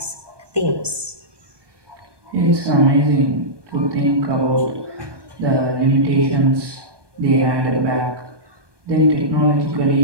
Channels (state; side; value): late; left; 1.2 ms